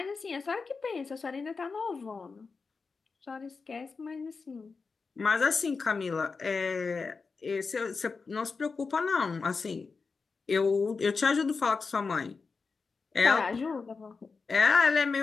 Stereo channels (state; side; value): quieter; right; 4.7 dB